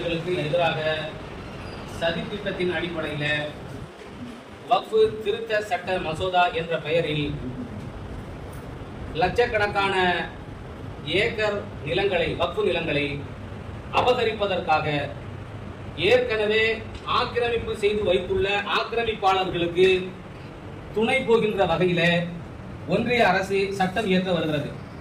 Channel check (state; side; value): identical; both; correlation 1.00